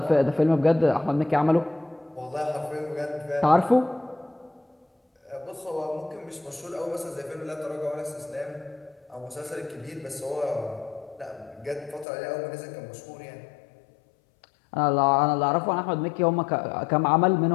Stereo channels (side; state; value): right; drops out; at 12.1 s